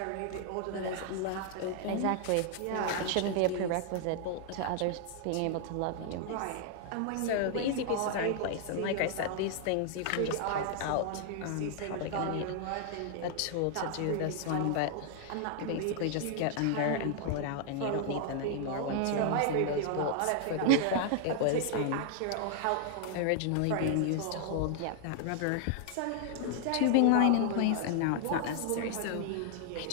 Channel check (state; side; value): different; both; correlation 0.00